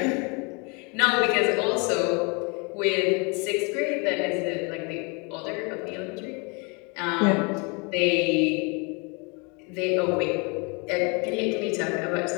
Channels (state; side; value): quieter; right; 31.9 dB